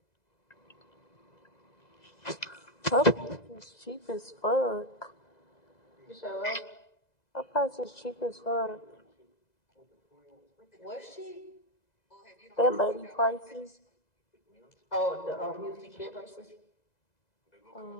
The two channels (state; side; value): late; right; 2.0 ms